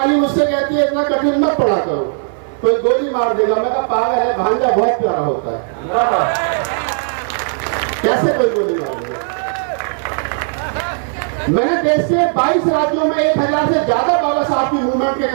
मुझसे कहती है इतना कठिन मत पढ़ा करो, कोई गोली मार देगा। मैं कहा पागल है, भांजा बहुत प्यारा होता है, कैसे कोई गोली मार देगा? मैंने देश के 22 राज्यों में 1000 से ज्यादा बाबा साहब की मूवमेंट के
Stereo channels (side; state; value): left; silent; 56 dB below the other